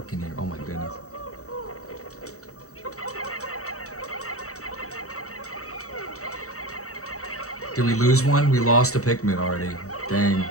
in here. Oh my goodness. Did we lose one? We lost a Pikmin already. Dang.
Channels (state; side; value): late; right; 0.65 ms